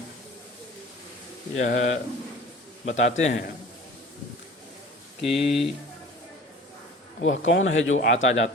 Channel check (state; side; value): normal; both; correlation 0.43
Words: यह बताते हैं कि वह कौन है जो आता